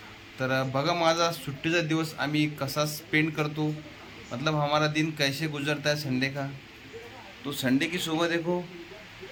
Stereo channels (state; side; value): identical; both; correlation 1.00